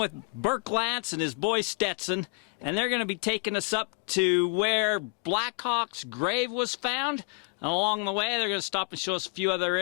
Burke Lance and his boy Stetson, and they're going to be taking us up to where Blackhawk's grave was found. And along the way, they're going to stop and show us a few other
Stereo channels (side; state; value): right; quieter; 32.7 dB